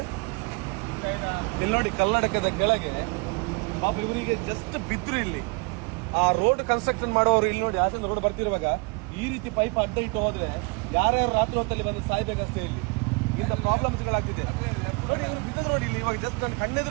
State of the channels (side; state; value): left; quieter; 29.8 dB